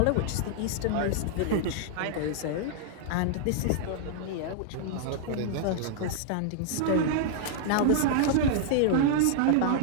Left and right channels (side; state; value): both; different; correlation -0.01